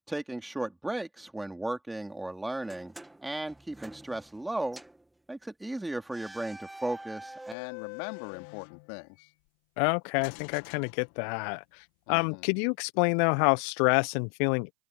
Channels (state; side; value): drops out; right; at 7.6 s